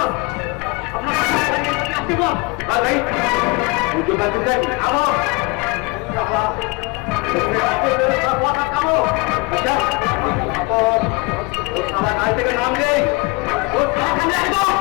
থেকে নাম নেই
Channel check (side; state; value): right; quieter; 26.4 dB